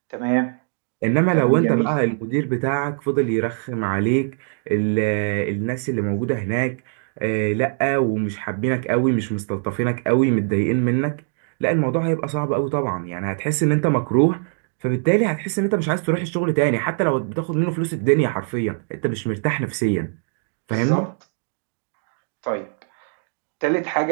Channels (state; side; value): silent; left; digital silence